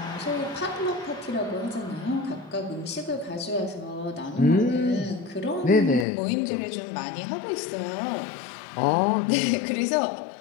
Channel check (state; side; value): drops out; right; at 6.1 s